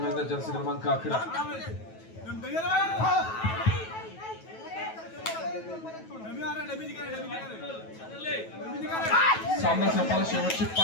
एकदा जर्सी क्रमांक 11. सामना संपायला शेवटची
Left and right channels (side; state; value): right; late; 9.2 ms